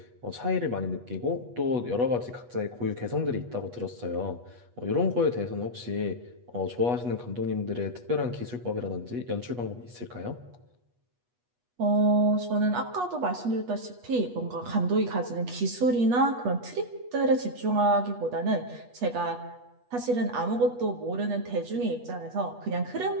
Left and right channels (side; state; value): left; late; 8.2 ms